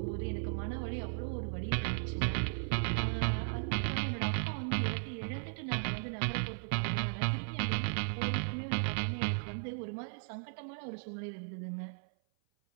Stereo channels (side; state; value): left; silent; 54 dB below the other